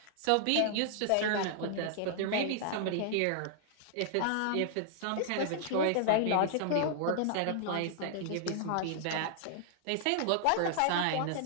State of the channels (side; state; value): both; different; correlation -0.01